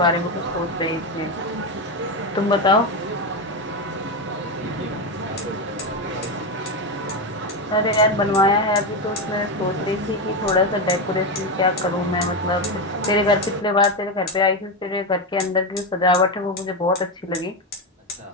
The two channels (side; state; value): both; normal; correlation 0.11